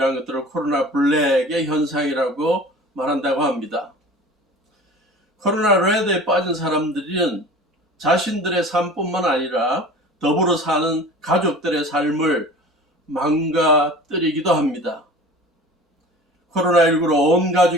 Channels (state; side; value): normal; both; correlation 0.40